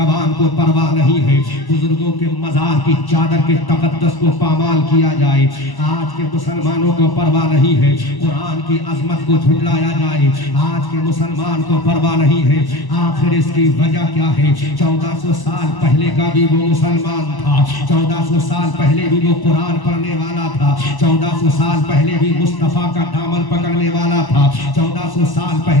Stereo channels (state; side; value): late; right; 1.0 ms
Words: को परवाह नहीं है, बुजुर्गों के मजार की चादर के तकद्दस को पामाल किया जाए आज के मुसलमानों को परवाह नहीं है, कुरान की अजमत को झुटलाया जाए आज के मुसलमान को परवाह नहीं है। आखिर इसकी वजह क्या है? 1400 साल पहले का भी वो मुसलमान था, 1400 साल पहले भी वो कुरान पढ़ने वाला था, 1400 साल पहले भी मुस्तफा का दामन पकड़ने वाला था, 1400 साल